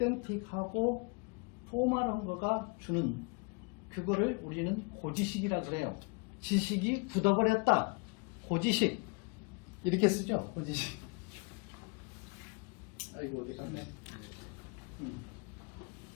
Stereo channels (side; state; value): right; quieter; 31.7 dB